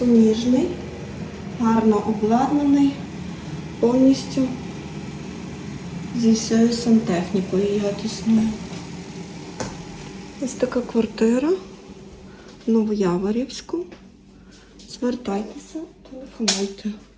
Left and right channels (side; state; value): both; identical; correlation 1.00